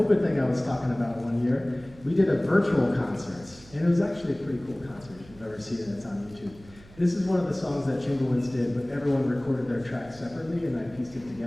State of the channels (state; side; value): noise; right; hum, 22 dB below the sound